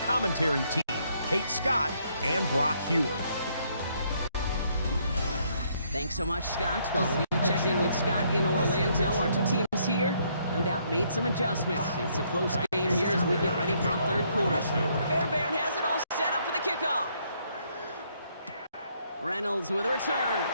team, Kate Scott and Brock Hewer. Thanks so much, Scott. Well, we checked in with Scott in Orlando. Our 2 teams here, no doubt, made some adjustments. It's a close game here as we get ready for our 3rd quarter. Fairbairn has it all set up for the kickoff. Reynolds with a return.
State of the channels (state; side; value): inverted; both; correlation -0.70